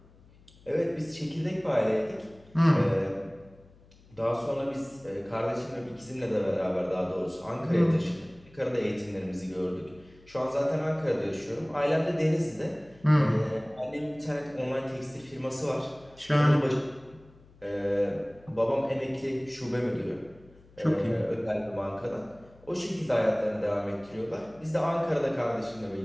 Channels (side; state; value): left; noise; hum, 26 dB below the sound